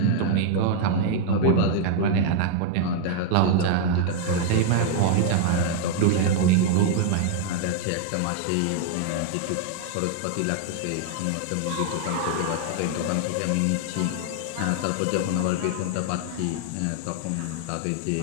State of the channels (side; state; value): both; different; correlation 0.00